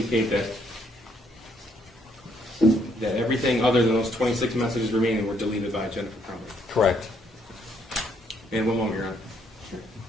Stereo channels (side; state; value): both; normal; correlation 0.70